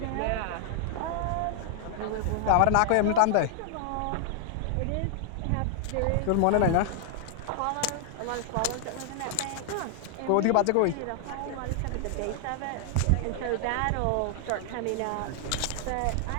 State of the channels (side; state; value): both; different; correlation 0.00